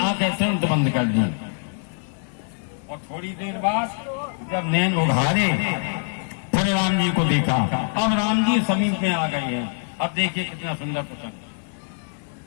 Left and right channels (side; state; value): right; silent; 63 dB below the other